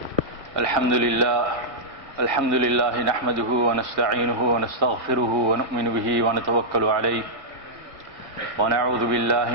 الحمد لله نحمده ونستعينه ونستغفره ونؤمن به ونتوكل عليه ونعوذ بالله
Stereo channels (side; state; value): left; late; 1.8 ms